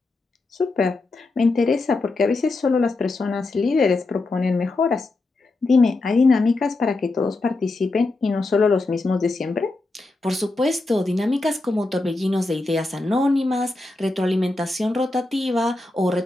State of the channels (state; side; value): quieter; right; 3.1 dB